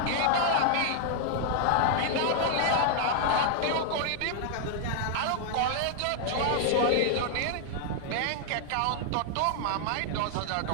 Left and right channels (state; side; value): different; both; correlation 0.00